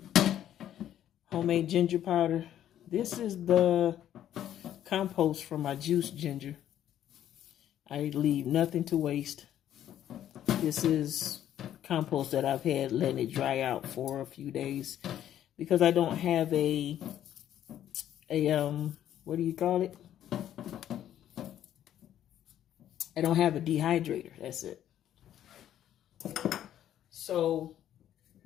homemade ginger powder. This is the compost from my juiced ginger. I leave nothing to waste. This is compost that I've had letting it dry out for a few days because I don't have a what do you call it? I don't have a dehydrator. That's it. So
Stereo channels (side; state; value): right; quieter; 11.2 dB